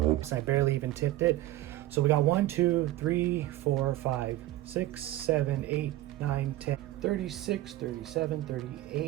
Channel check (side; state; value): left; quieter; 15.7 dB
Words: I barely even tipped it. So we got 1, 2, 3, 4, 5, 6, 7, 8, 9, 10, 36, 37,